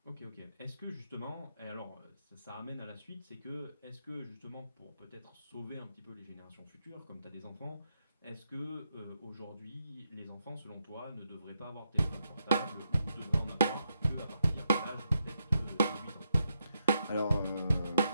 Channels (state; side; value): inverted; both; correlation -0.81